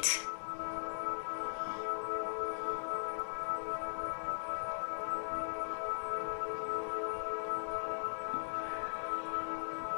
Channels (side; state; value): right; silent; digital silence